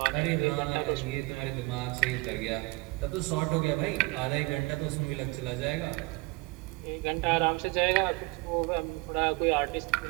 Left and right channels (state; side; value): quieter; left; 24.8 dB